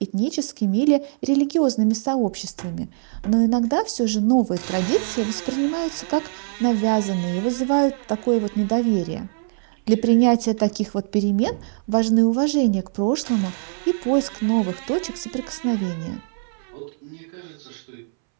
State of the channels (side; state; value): left; silent; 64 dB below the other